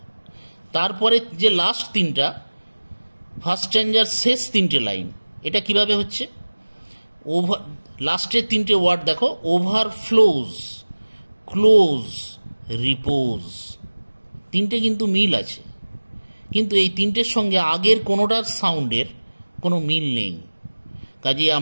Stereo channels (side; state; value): both; inverted; correlation -1.00